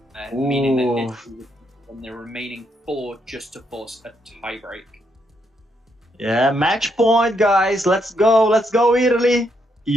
meaning that Italy and the remaining 4 just to force a tiebreak. Yeah, match point, guys. Let's go, Italy.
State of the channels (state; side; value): normal; both; correlation 0.77